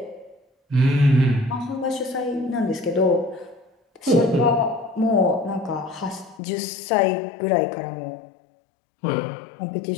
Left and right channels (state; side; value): drops out; right; at 6.4 s